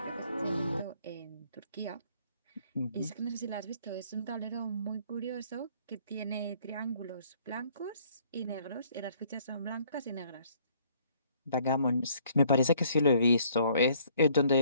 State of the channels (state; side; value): inverted; both; correlation -0.62